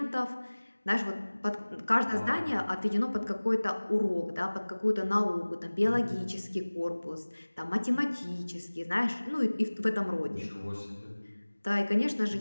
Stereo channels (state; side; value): inverted; both; correlation -1.00